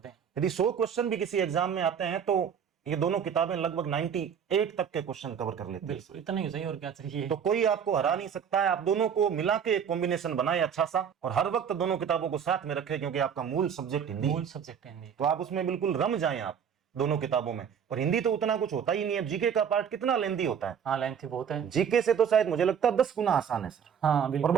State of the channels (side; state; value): left; quieter; 7.7 dB